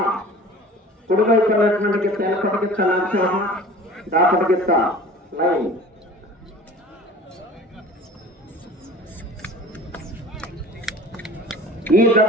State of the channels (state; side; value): normal; both; correlation 0.42